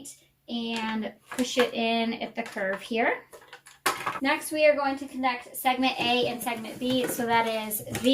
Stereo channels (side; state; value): both; identical; correlation 1.00